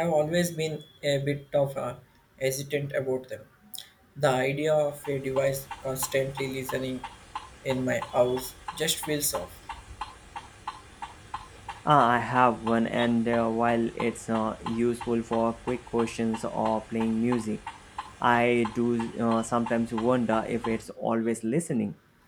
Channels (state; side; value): identical; both; correlation 1.00